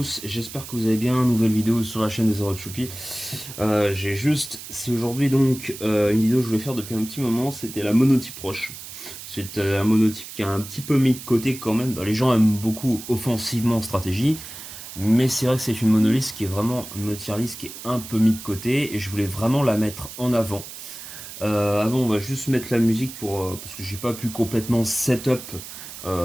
j'espère que vous allez bien, nouvelle vidéo sur la chaîne des Zero Choupi. C'est aujourd'hui donc une vidéo que je voulais faire depuis un petit moment, c'était la monotype roche. C'est un monotype qui a un petit peu mis de côté quand même. Les gens aiment beaucoup offensivement en stratégie, mais c'est vrai que c'est une monoliste qui est vraiment une tier list qui est un peu mis de côté et je voulais vraiment la mettre en avant. Avant on va juste mettre la musique parce que j'ai pas pu complètement setup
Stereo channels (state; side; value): noise; right; hiss, 12 dB below the sound